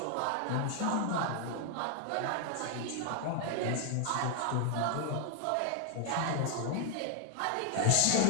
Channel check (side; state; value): both; different; correlation 0.00